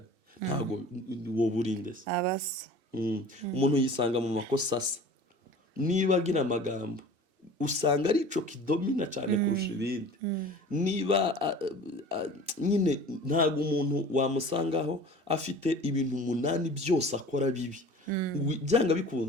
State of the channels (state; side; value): late; left; 2.7 ms